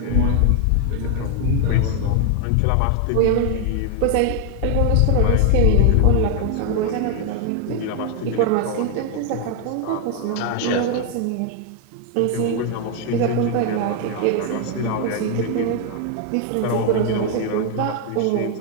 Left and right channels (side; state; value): both; different; correlation 0.00